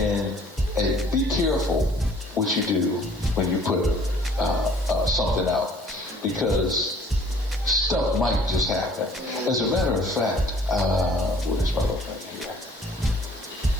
be careful what you do when you put something out, because stuff might just happen. As a matter of fact, what is my little thing here?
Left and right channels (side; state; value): both; normal; correlation 0.55